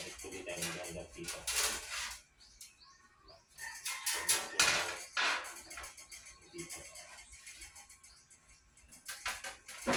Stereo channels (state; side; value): identical; both; correlation 1.00